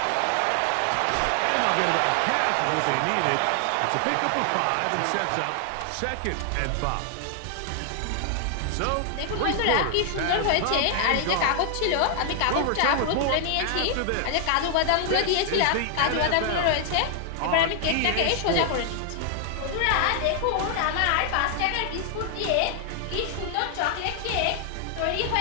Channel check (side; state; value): both; different; correlation 0.00